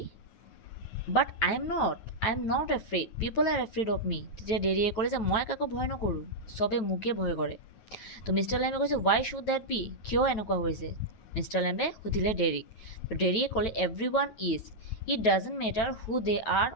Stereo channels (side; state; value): right; late; 9.0 ms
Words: but I am not afraid, people are afraid of me. তেতিয়া ডেৰিয়ে ক'লে যে মই কাকো ভয় নকৰোঁ, চবে মোকে ভয় কৰে। তো মিষ্টাৰ লেম্বে কৈছে ৱাই শ্বুড ডেট বি, কিয় এনেকুৱা হৈছে? মিষ্টাৰ লেম্বে সুধিলে ডেৰিক। তো ডেৰিয়ে ক'লে everyone is, it doesn't matter who they are